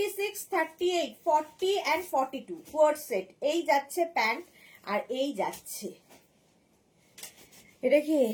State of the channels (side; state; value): both; identical; correlation 1.00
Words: 38, 40 and 42 কোয়ার্ড সেট। এই যাচ্ছে প্যান্ট আর এই যাচ্ছে এটা কি